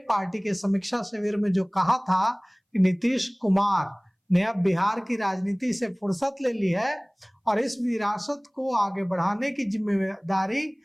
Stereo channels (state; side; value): identical; both; correlation 1.00